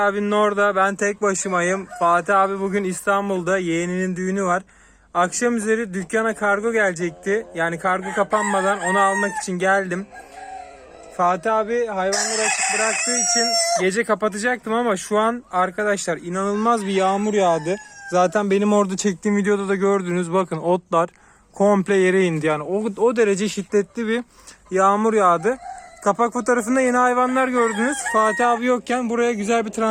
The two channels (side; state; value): both; identical; correlation 1.00